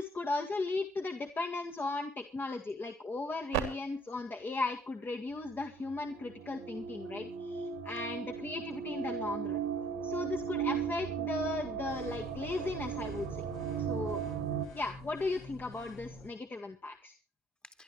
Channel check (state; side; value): normal; both; correlation 0.60